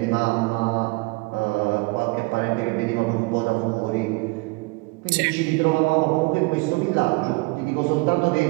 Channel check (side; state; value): left; quieter; 25.9 dB